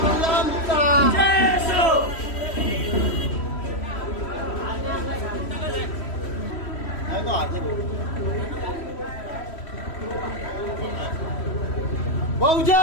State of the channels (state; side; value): late; right; 3.1 ms